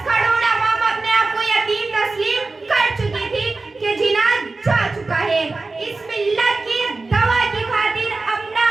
करोड़ अवाम अपने आप को यतीम तस्लीम कर चुकी थी कि जिना जा चुका है। इस मिल्लत की दवा की खातिर अपना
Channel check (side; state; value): left; quieter; 3.6 dB